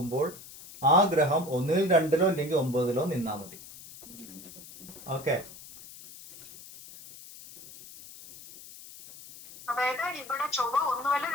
ആ ഗ്രഹം ഒന്നിൽ 2ലോ അല്ലെങ്കിൽ 9ലോ നിന്നാൽ മതി. ഓക്കെ.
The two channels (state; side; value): noise; left; hiss, 17 dB below the sound